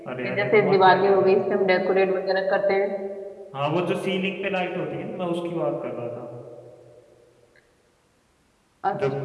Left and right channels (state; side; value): identical; both; correlation 1.00